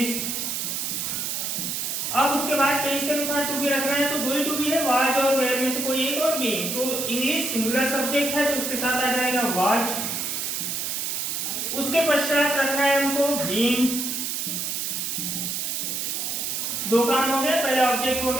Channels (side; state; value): right; noise; hiss, 2 dB below the sound